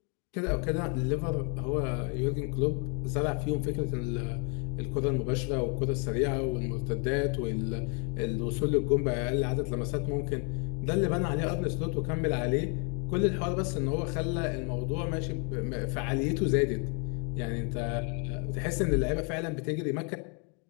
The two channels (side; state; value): right; quieter; 36.2 dB